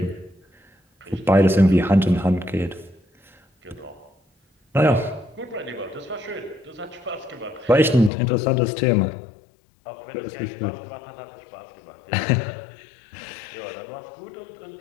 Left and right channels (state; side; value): drops out; right; at 8.1 s